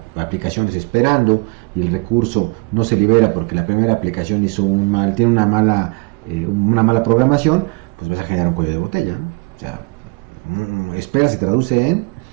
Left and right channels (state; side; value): quieter; left; 31.3 dB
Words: aplicaciones esperando y el recurso no se libera porque la primera aplicación tiene una mala programación, pues vas a generar un cuello de botella, ¿no? O sea, espera se traduce en